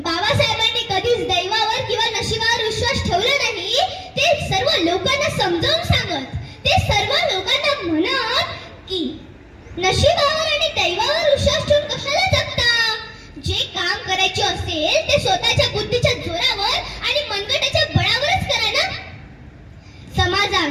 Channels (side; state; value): both; identical; correlation 1.00